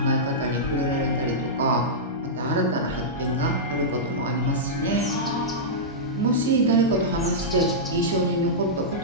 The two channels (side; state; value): both; normal; correlation -0.12